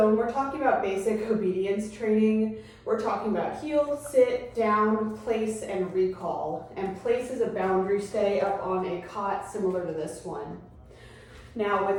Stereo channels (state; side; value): identical; both; correlation 1.00